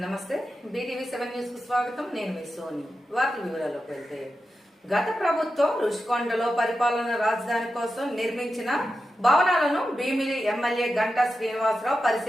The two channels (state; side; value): normal; both; correlation 0.90